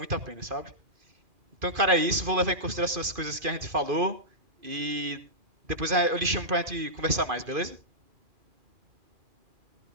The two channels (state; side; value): late; left; 2.5 ms